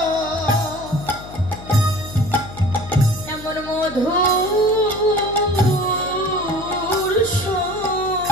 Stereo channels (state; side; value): noise; left; hum, 15 dB below the sound